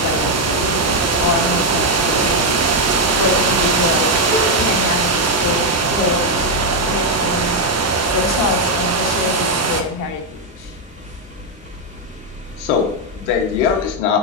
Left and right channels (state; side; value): normal; both; correlation 0.01